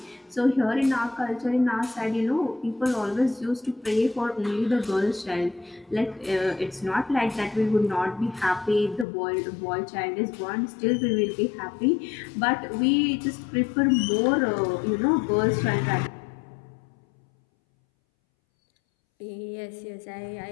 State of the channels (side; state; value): right; drops out; at 9.1 s